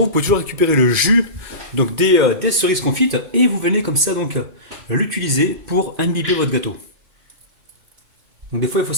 vous pouvez toujours récupérer le jus donc des cerises confites et vous venez comme ça donc l'utiliser pour imbiber votre gâteau. Donc des fois il faut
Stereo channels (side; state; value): left; late; 2.4 ms